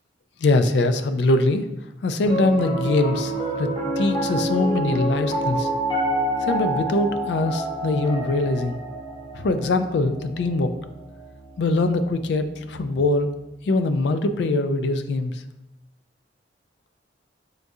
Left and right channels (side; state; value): both; normal; correlation 0.50